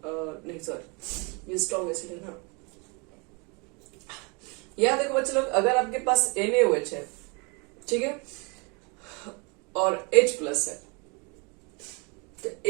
नहीं सॉरी, ये स्ट्रॉन्ग एसिड है ना। यहां देखो बच्चे लोग, अगर आपके पास NaOH है, ठीक है, और H प्लस है, तो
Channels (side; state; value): left; quieter; 31.6 dB